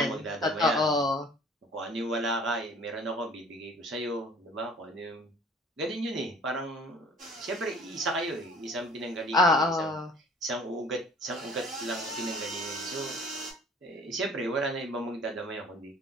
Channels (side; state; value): both; normal; correlation 0.51